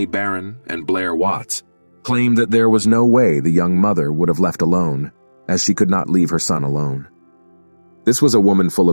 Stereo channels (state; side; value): inverted; both; correlation -1.00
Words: Barron and Blair Watts, claimed that there was no way the young mother would have left alone, as she could not leave her son alone. This was a woman full